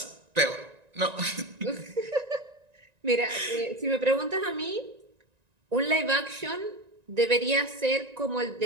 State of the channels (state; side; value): late; left; 1.9 ms